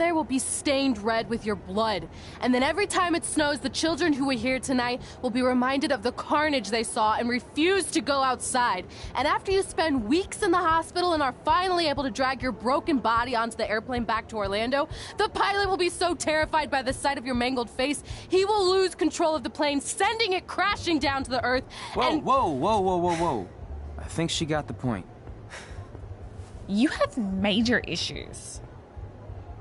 will be stained red with your blood. And then every time it snows, the children who were here tonight will be reminded of the carnage they saw and refuse to go outside. And after you spend weeks in the hospital and are finally able to drag your broken body onto the airplane back to Orlando, the pilot will be so terrified by the sight of your mangled face, he will lose control of the plane, sending it crashing down to the earth. Whoa. I think she got the point. You have major issues.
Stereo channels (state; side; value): identical; both; correlation 1.00